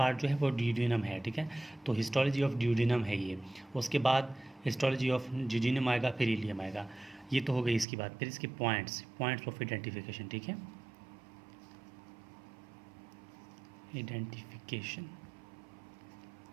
जो है वो ड्यूडिनम है, ठीक है। तो हिस्टोलॉजी ऑफ ड्यूडिनम है ये। उसके बाद हिस्टोलॉजी ऑफ जूजिनम आएगा, फिर इलियम आएगा। ये तो हो गई इसकी बात। फिर इसके पॉइंट्स ऑफ आइडेंटिफिकेशन, ठीक है, आइडेंटिफिकेशन,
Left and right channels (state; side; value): drops out; left; at 7.9 s